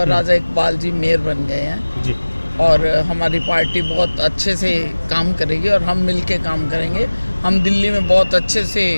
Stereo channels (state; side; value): inverted; both; correlation -1.00